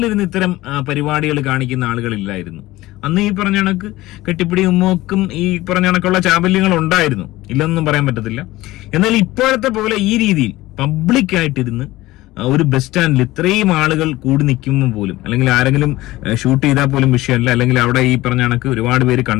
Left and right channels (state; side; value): quieter; right; 18.0 dB